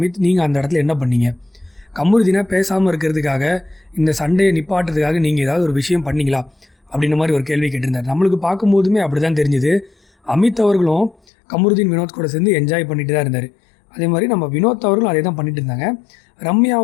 நீங்கள் அந்த இடத்துல என்ன பண்ணீங்க? கமருதீனை பேசாமல் இருக்கிறதுக்காக, இந்த சண்டையை நிப்பாட்டுறதுக்காக நீங்கள் ஏதாவது ஒரு விஷயம் பண்ணிங்களா அப்படின்ற மாதிரி ஒரு கேள்வி கேட்டிருந்தார். நம்மளுக்கு பார்க்கும்போதுமே அப்படி தான் தெரிஞ்சுது. அமித் அவர்களும் கமருதீன், வினோத் கூட சேர்ந்து என்ஜாய் பண்ணிட்டு தான் இருந்தார். அதே மாதிரி நம்ம வினோத் அவர்களும் அதே தான் பண்ணிட்டு இருந்தாங்க.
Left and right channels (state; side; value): drops out; right; at 11.2 s